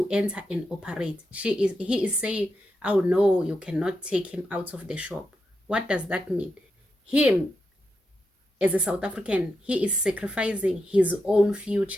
enter and operate. He is saying, oh no, you cannot take him out of the shop. What does that mean? Him, as a South African, he is sacrificing his own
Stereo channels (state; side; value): normal; both; correlation 0.86